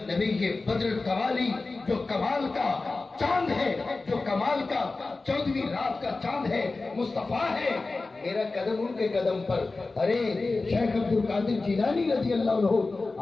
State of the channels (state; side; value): quieter; right; 3.6 dB